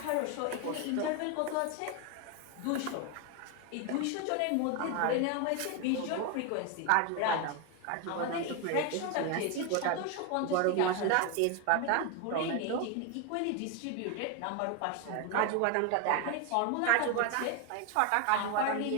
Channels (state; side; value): different; both; correlation 0.01